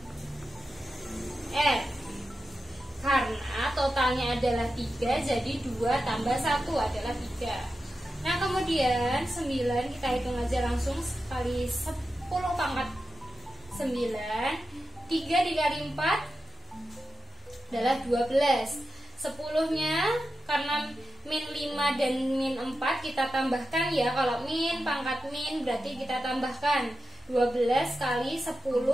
R. Karena totalnya adalah 3, jadi 2 tambah 1 adalah 3. Nah, kemudian 9 kita hitung aja langsung kali 10 pangkat 9. 3 dikali 4 adalah 12. 10-nya karena min 5 dan min 4 kita tambahkan ya. Kalau min pangkat min berarti kita tambahkan 12 kali 10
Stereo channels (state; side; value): normal; both; correlation 0.91